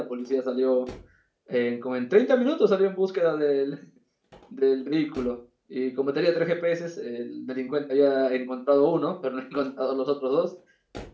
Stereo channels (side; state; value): both; identical; correlation 1.00